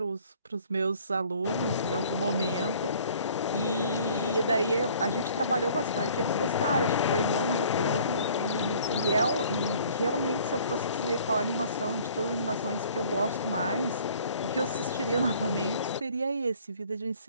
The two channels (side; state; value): both; inverted; correlation -0.54